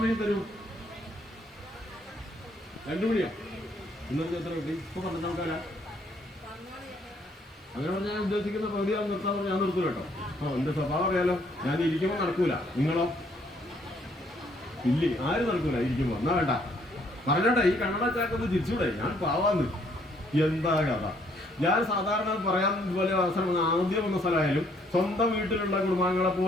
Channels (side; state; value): both; normal; correlation 0.67